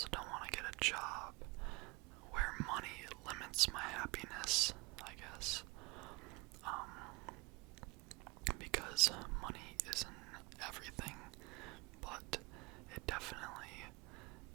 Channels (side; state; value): left; quieter; 25.5 dB